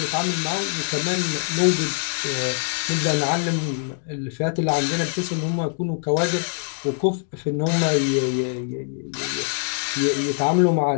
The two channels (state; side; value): silent; right; 63 dB below the other